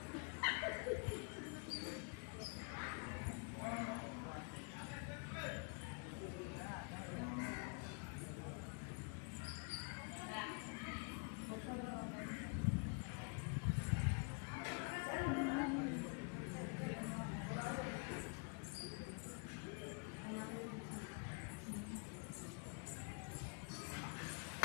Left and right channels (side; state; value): right; quieter; 36.6 dB